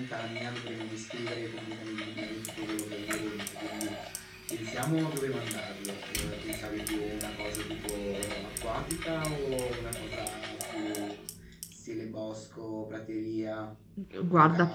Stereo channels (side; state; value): both; identical; correlation 1.00